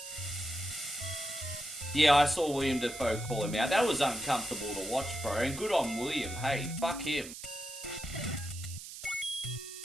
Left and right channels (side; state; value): right; noise; hiss, 11 dB below the sound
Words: Yeah, I saw William Dafoe call him out. That was uncomfortable to watch, bro. And good on William. Hey, fuck him.